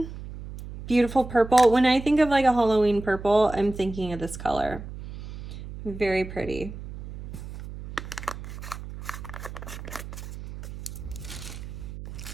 beautiful purple. When I think of like a Halloween purple, I'm thinking of this color. Very pretty.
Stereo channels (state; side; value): noise; right; hum, 11 dB below the sound